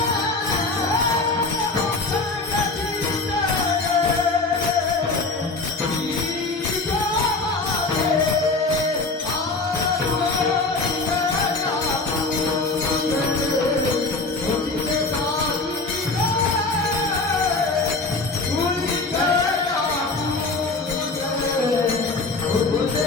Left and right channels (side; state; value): right; quieter; 3.6 dB